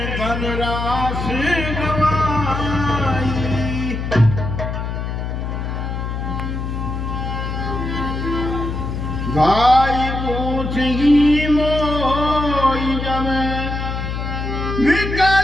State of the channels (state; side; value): noise; left; hum, 4 dB below the sound